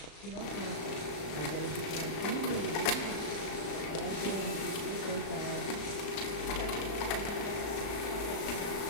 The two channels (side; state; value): right; late; 34 ms